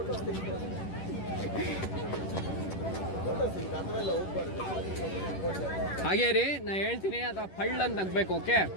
ಹಾಗೇ ರೀ, ನಾ ಹೇಳ್ತೀನಿ, ಅಥವಾ ಪಳ್ಳ ಅಂತ ನಗ್ಬೇಕು. ಓಕೆ,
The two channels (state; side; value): late; right; 11 ms